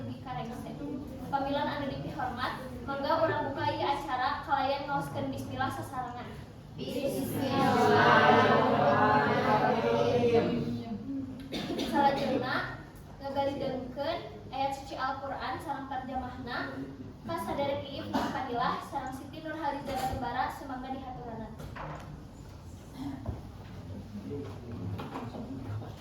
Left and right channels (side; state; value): both; identical; correlation 1.00